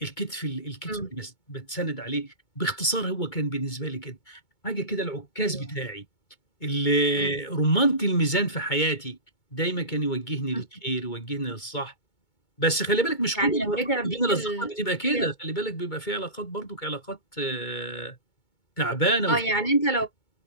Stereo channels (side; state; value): right; late; 2.2 ms